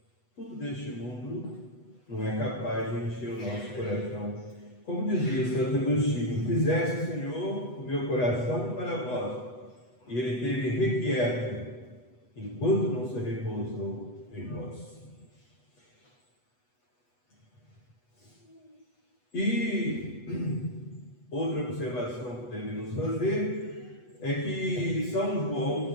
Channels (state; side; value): late; right; 8.2 ms